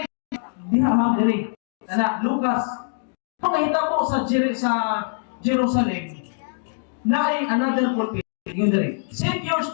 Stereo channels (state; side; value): silent; right; digital silence